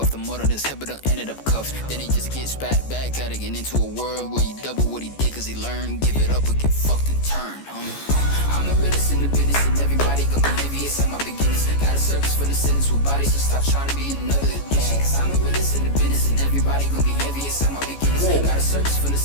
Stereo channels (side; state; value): right; late; 14 ms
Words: the mud on his head, but done ended up cuffed. Then he just gets back at it, get into a world where he double what he did, cause he learned. Give it up or get fucked and turn, homie. I'm the realest in the business, and everybody gon' be envious at my beginnings. Got a circus for the sentence with bodies, so stop trying to be another addiction. Cause I'm the realest in the business, and everybody gon' be envious at my beginnings. Got a circus for the